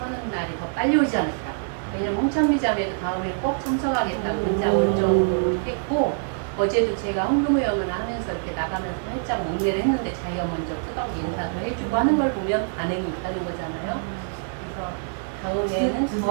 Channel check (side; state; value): left; silent; 61 dB below the other